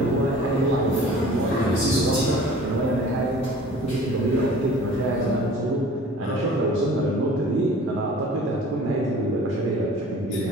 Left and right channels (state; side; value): normal; both; correlation 0.46